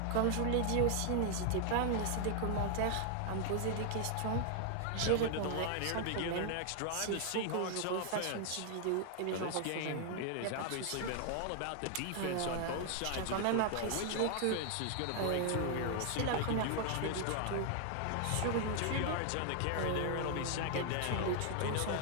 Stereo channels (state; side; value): different; both; correlation 0.00